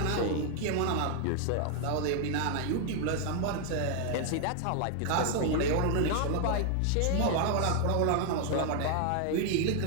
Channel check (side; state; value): both; different; correlation 0.00